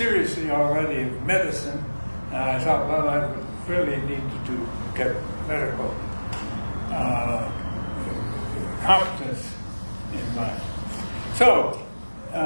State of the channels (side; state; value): both; inverted; correlation -1.00